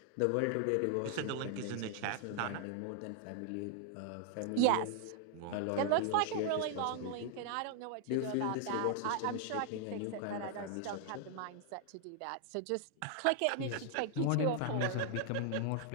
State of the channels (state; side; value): different; both; correlation 0.00